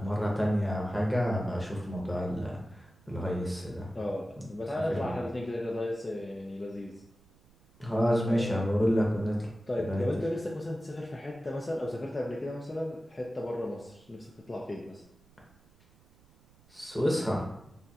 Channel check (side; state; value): right; noise; rumble, 29 dB below the sound